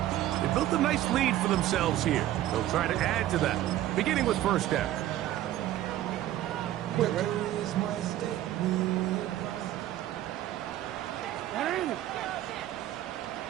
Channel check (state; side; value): quieter; left; 13.5 dB